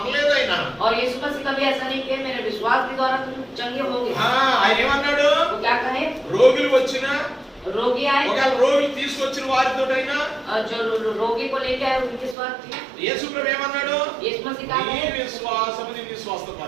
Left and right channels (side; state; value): left; drops out; at 12.4 s